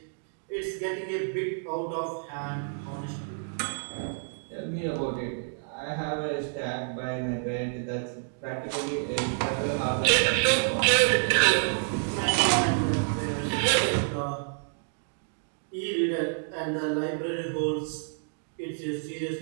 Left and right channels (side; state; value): left; silent; digital silence